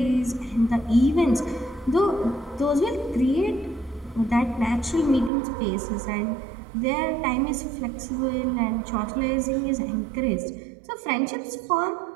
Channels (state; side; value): drops out; left; at 5.3 s